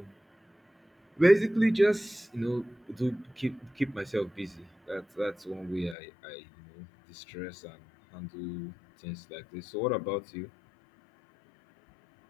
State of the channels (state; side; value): drops out; right; at 6.0 s